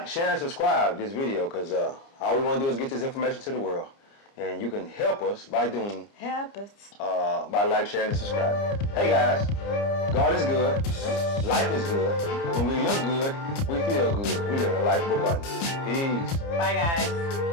share, and subscribe this video because all we want to do is get this information to the world. And you can help us by doing... Help us. By like, sharing, and subscribing. Hey, guys, God is good. Life is good. When we look good, we feel good. We live a life of abundance. Peace. Bye,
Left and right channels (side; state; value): right; late; 30 ms